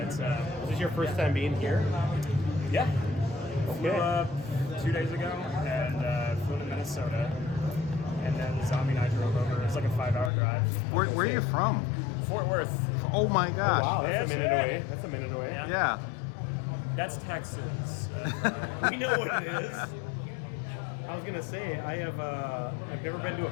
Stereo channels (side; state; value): right; drops out; at 10.3 s